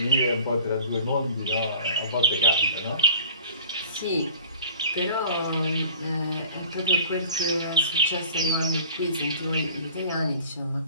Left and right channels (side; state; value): both; inverted; correlation -0.46